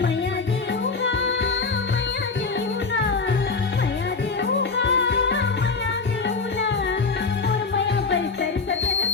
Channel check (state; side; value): quieter; right; 4.4 dB